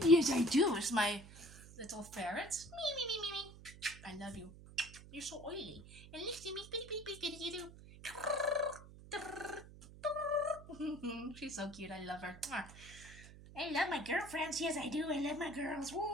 Yes, I do. It's my little ferret. Me. I love you. You're so oily. And listen to me, you do. She's so cute. I love her. I love my girlfriends. Yes, I do. I love my girls. Woo!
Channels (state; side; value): noise; right; hum, 17 dB below the sound